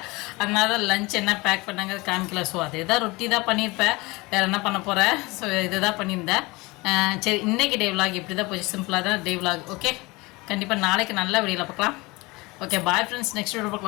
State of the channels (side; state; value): right; quieter; 23.6 dB